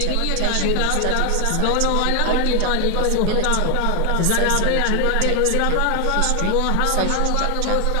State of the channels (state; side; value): different; both; correlation 0.00